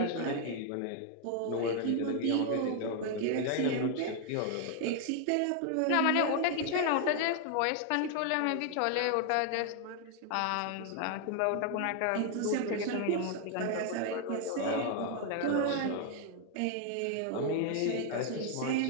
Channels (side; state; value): both; different; correlation 0.00